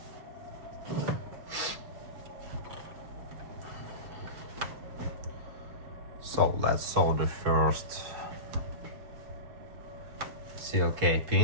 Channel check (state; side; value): late; left; 7.0 ms